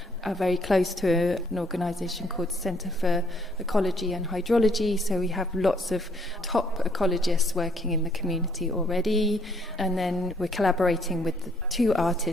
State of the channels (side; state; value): both; normal; correlation 0.66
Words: are very close to an organisation called Centre for Ecology and Hydrology, so we have lots of top ecologists working in the community already, and then we're collaborating with the two